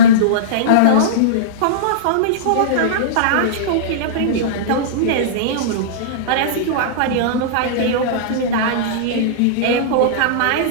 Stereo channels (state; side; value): different; both; correlation -0.04